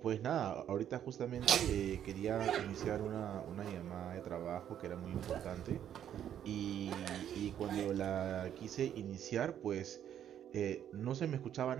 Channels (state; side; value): quieter; left; 10.0 dB